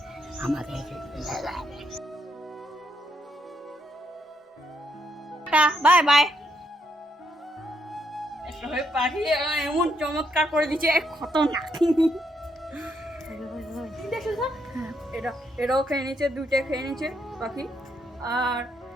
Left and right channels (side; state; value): both; normal; correlation 0.76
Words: বাই বাই। পাখি এমন চমৎকার করে দিচ্ছে, খতরনাক। এটাও খেয়ে নিচ্ছে, দুইটা খেয়ে নিচ্ছে পাখি।